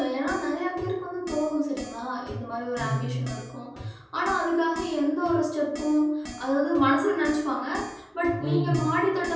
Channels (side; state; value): both; identical; correlation 1.00